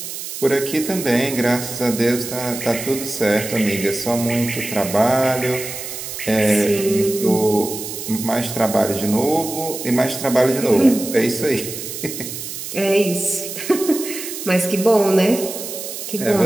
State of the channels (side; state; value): right; noise; hiss, 8 dB below the sound